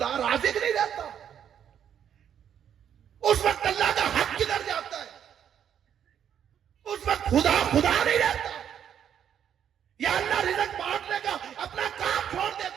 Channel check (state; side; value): quieter; left; 9.0 dB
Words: رازق نہیں رہتا، اس وقت اللہ کا حق کدھر جاتا ہے؟ اس وقت خدا نہیں رہتا، یا اللہ رزق بانٹنے کا اپنا کام چھوڑ